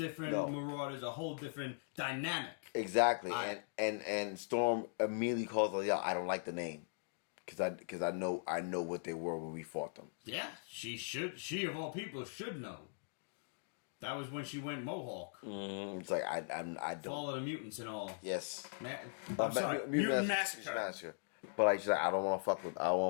Marauders, a whole different dynamic. Exactly. And Storm immediately calls her, I don't like the name. Because I know what they were when we fought them. Yeah, she of all people should know. That was when she went Mohawk. It's like I don't Fall of the Mutants and all. Yes. I'm sorry, Mutant Massacre. But like she's like, I don't want to fuck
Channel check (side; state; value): right; silent; digital silence